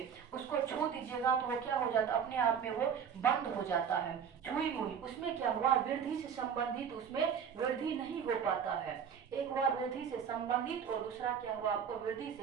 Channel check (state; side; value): quieter; left; 7.4 dB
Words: उसको छू दीजिएगा तो वो क्या हो जाता है, अपने आप में वो बंद हो जाता है। छुई मुई, उसमें क्या हुआ, वृद्धि से संबंधित, उसमें वृद्धि नहीं हो पाता है। एक हुआ वृद्धि से संबंधित और दूसरा क्या हुआ आपको, वृद्धि